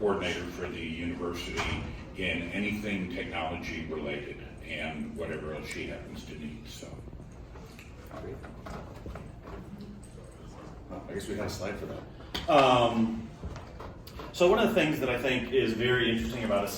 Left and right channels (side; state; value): both; identical; correlation 1.00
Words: for the university in anything technology related and whatever else she happens to need. So, Great. Oh, I guess we had a slide for that. So one of the things that I think is very interesting about